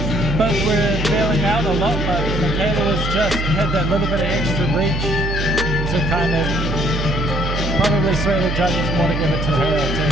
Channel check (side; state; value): right; noise; hum, 2 dB below the sound